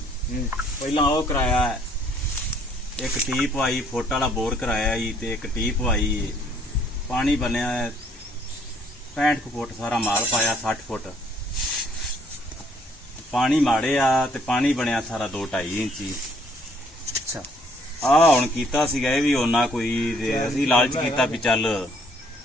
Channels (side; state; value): both; normal; correlation 0.64